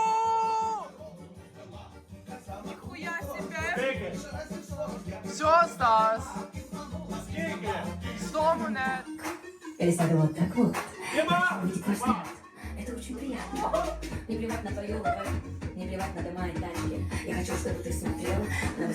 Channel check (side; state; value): both; identical; correlation 1.00